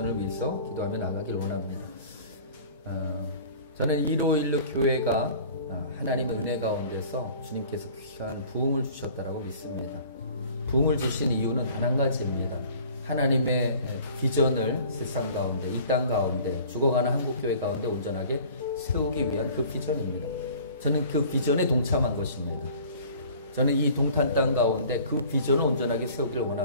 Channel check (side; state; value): both; inverted; correlation -0.47